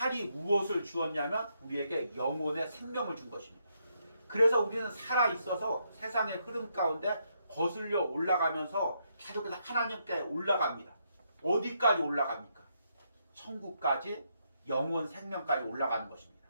무엇을 주었냐면 우리에게 영혼의 생명을 준 것입니다. 그래서 우리는 살아있어서 세상의 흐름 가운데 거슬려 올라가면서 계속해서 하나님께 올라갑니다. 어디까지 올라갑니까? 천국까지, 영원 생명까지 올라가는 것입니다.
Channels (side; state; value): both; inverted; correlation -0.77